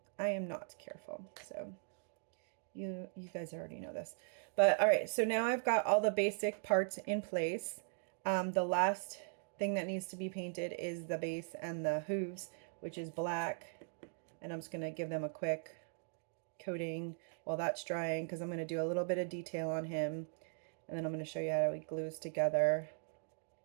I am not careful. So you guys already know this. But all right, so now I've got all the basic parts in place. The last thing that needs to be painted is the base and the hooves, which is black. And I'm just going to give them a quick coating while that's drying, because I'm going to do a little bit of detail on him, and then I'm going to show you how he glues together.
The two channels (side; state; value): left; silent; digital silence